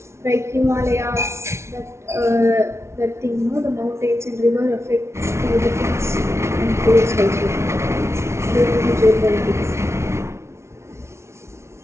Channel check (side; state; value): left; late; 0.13 ms